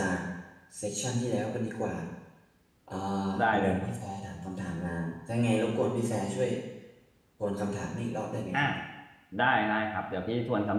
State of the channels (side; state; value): both; identical; correlation 1.00